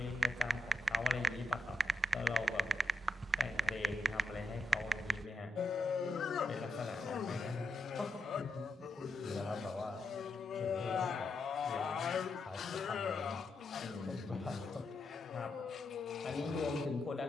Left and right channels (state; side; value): normal; both; correlation 0.83